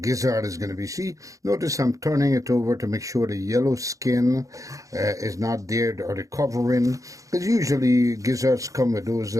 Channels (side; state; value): left; late; 0.16 ms